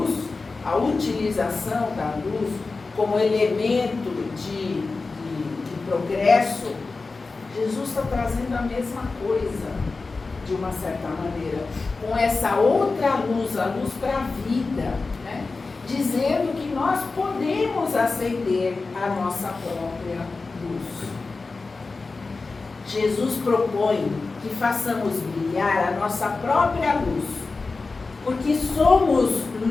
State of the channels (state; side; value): quieter; right; 3.9 dB